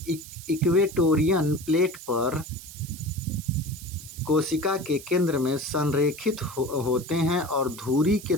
इक्वेटोरियन प्लेट पर कोशिका के केंद्र में संरेखित होते हैं और धुरी के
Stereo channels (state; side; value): noise; right; hiss, 15 dB below the sound